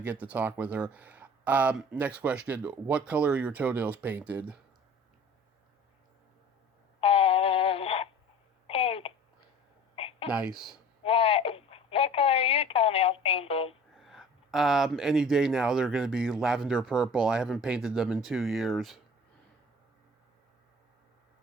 to talk with her. Next question. What color are your toenails painted? Pink. Nice. What color are your toenails painted? Any day now they're going to be lavender purple. I haven't painted them in 2 years.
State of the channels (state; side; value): normal; both; correlation 0.44